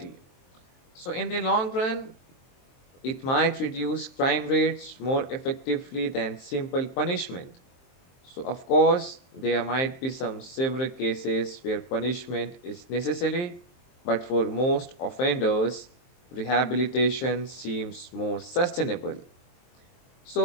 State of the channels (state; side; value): late; right; 23 ms